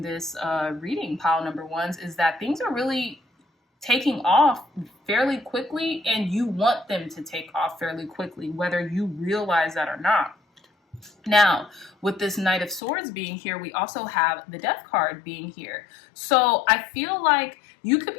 this reading, pile number ones, is that things are really taking off fairly quickly, and you want them to take off fairly quickly, whether you realize that or not. Now, with this Knight of Swords being here, we also have the Death card being here. So I feel like you could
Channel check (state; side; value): drops out; right; at 12.8 s